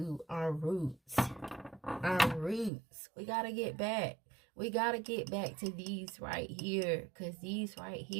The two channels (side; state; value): left; drops out; at 2.7 s